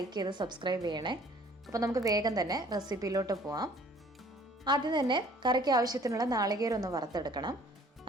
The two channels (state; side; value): normal; both; correlation 0.55